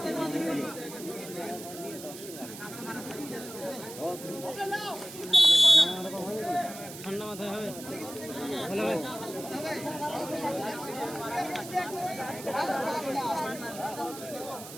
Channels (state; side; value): noise; right; hiss, 13 dB below the sound